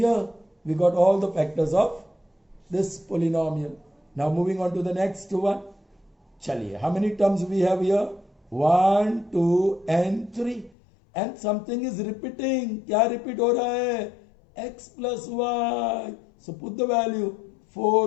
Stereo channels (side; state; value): right; drops out; at 10.7 s